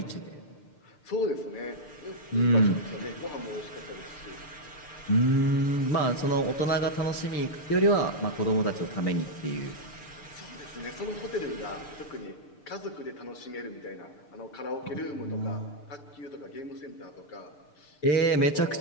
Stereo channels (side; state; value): right; late; 6.8 ms